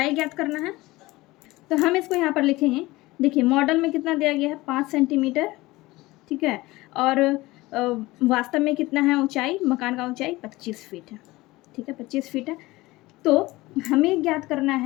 ज्ञात करना है तो हम इसको यहाँ पर लिखेंगे। देखिए मॉडल में कितना दिया गया है, 5 सेंटीमीटर, ठीक है। और वास्तव में कितना है ऊंचाई, मकान का ऊंचाई 25 फीट है, ठीक है, 25 फीट है। तो हमें ज्ञात करना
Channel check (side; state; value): right; quieter; 19.8 dB